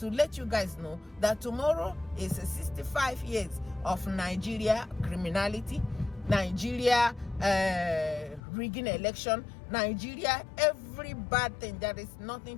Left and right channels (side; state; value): right; drops out; at 8.4 s